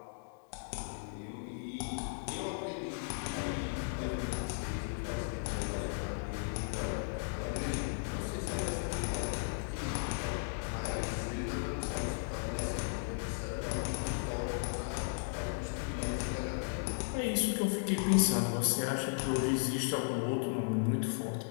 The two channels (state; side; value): silent; right; digital silence